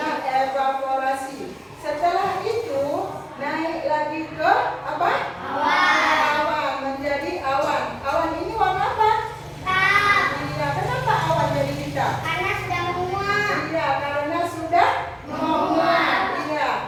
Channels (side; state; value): both; identical; correlation 1.00